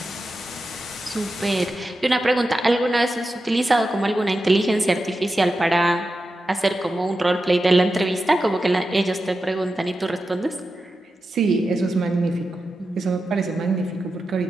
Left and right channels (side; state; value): both; normal; correlation 0.91